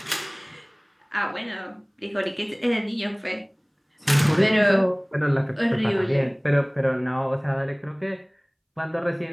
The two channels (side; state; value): both; identical; correlation 1.00